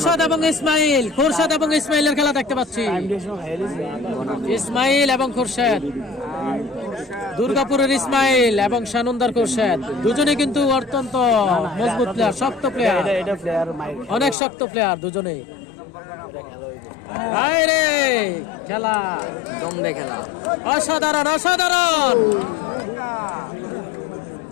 এবং ইসমাইলের খেলা দেখতে পাচ্ছি। ইসমাইল এবং খোরশেদ, দুর্গাপুরের ইসমাইল এবং সানন্দার খোরশেদ দুজনে কিন্তু অত্যন্ত মজবুত প্লেয়ার, শক্ত প্লেয়ার, অনেক শক্ত প্লেয়ার দুজনেই। খেলা জমবে খেলা, অসাধারণ অসাধারণ।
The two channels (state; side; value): drops out; right; at 14.4 s